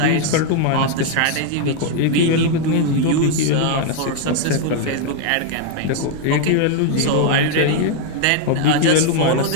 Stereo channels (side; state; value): both; different; correlation 0.00